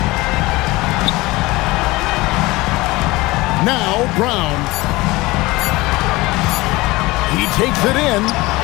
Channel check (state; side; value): quieter; right; 21.0 dB